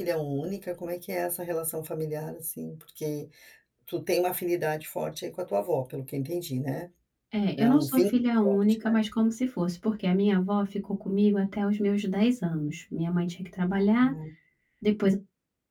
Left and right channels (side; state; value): both; identical; correlation 1.00